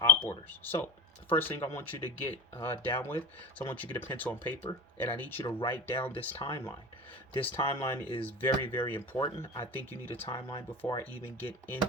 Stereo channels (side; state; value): both; normal; correlation 0.32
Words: op orders. So, the first thing I want you to get down with is I want you to get a pencil and paper, and I need you to write down this timeline. This timeline is very, very important. I think you need a timeline before I even get